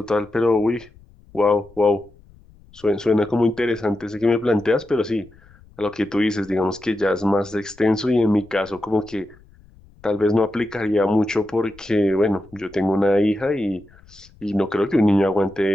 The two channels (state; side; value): noise; left; rumble, 26 dB below the sound